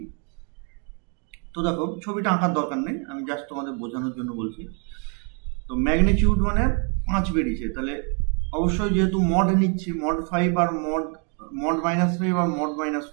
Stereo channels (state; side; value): quieter; left; 39.0 dB